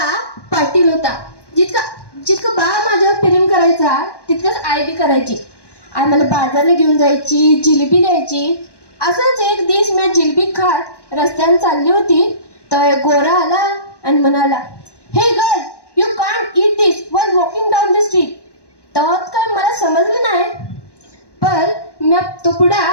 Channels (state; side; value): late; right; 1.1 ms